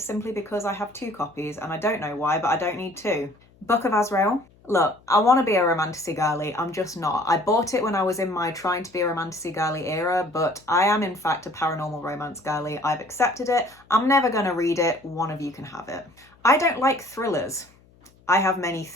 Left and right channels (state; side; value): noise; left; hum, 29 dB below the sound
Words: simply because I have 2 copies and I don't know why, but I don't need 2. Book of Azrael. Look, I want to be a romanticy girly, I'm just not. I bought it when I was in my trying to be a romanticy girly era, but I am in fact a paranormal romance girly. I've accepted it. I'm never going to read it. One of you can have it. I don't like thrillers. I have many